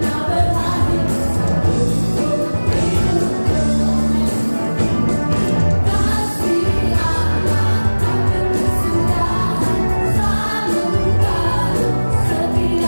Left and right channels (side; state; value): both; inverted; correlation -1.00